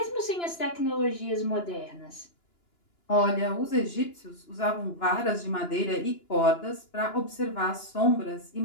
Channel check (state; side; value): late; right; 2.9 ms